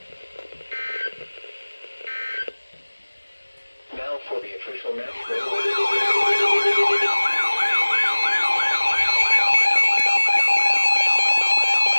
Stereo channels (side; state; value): both; inverted; correlation -1.00